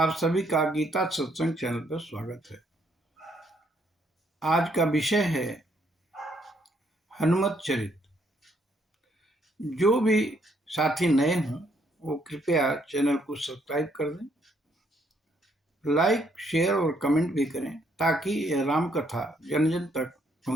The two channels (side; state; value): both; normal; correlation 0.71